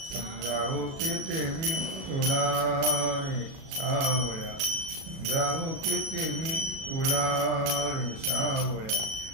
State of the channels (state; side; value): late; left; 37 ms